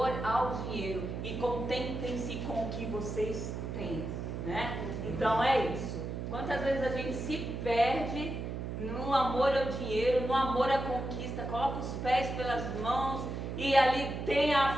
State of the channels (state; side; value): noise; right; hum, 5 dB below the sound